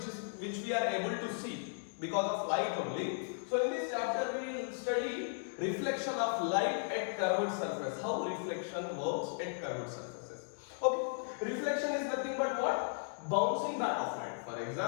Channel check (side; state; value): right; silent; digital silence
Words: which we are able to see because of light only. So in this chapter we will study reflection of light at curved surface. How reflection works at curved surfaces. Okay, reflection is nothing but what? Bouncing back of light. For